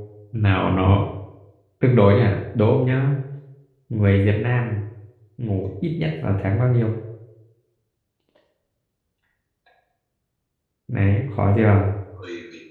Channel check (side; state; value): both; identical; correlation 1.00